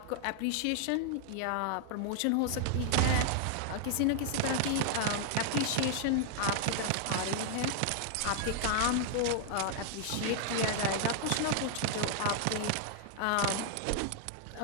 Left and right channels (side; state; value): both; different; correlation 0.00